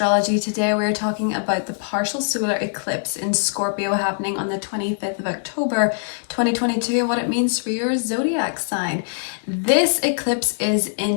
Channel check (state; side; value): silent; right; 64 dB below the other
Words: Today we're talking about the partial solar eclipse in Scorpio happening on the 25th of October 2022 and what it means for your zodiac sign. This eclipse is